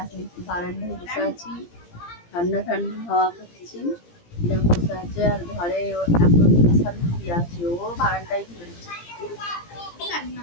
এখন একটু বারান্দায় বসে আছি, ঠান্ডা ঠান্ডা হাওয়া খাচ্ছি। এরকম বসে আছে আর ঘরে এখন বিশাল শুয়ে আছে, ও বারান্দায় ঘুরেছে।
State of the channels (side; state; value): right; late; 17 ms